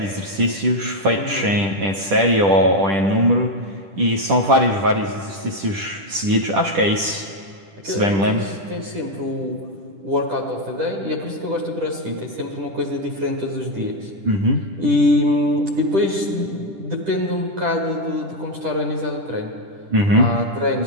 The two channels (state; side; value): late; left; 10 ms